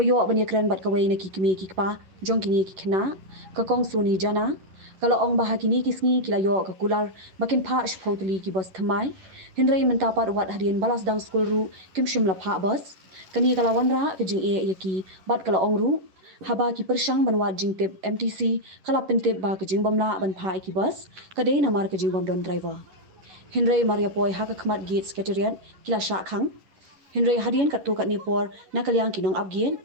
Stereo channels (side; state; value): left; late; 11 ms